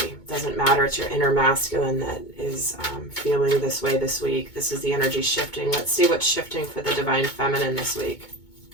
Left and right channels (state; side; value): late; right; 2.2 ms